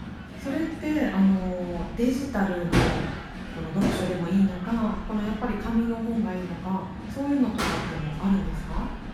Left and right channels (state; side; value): identical; both; correlation 1.00